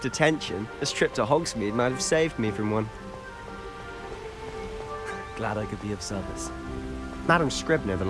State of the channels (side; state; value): both; identical; correlation 1.00